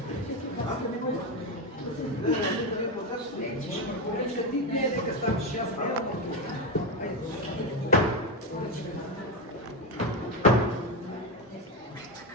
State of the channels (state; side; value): normal; both; correlation 0.13